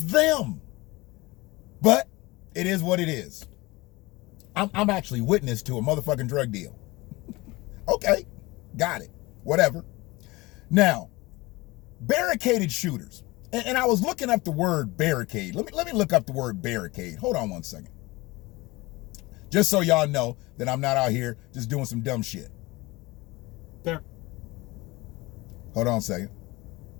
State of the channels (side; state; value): right; quieter; 22.0 dB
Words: But it is what it is. I'm actually witness to a motherfucking drug deal. Okay. Got it. Whatever. Now, barricaded shooters. And I was looking up the word barricade. Let me look up the word barricade. Hold on one second. Just so y'all know that I'm not out here just doing some dumb shit. Bar- Hold on a second.